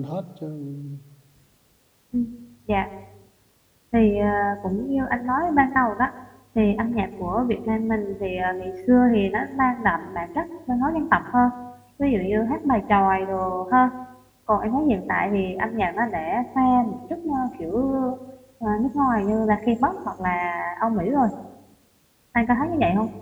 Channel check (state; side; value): identical; both; correlation 1.00